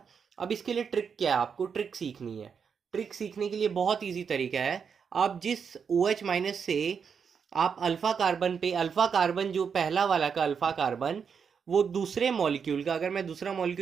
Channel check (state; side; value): quieter; left; 6.5 dB